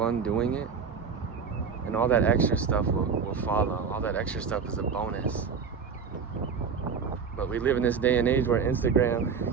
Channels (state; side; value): quieter; left; 6.1 dB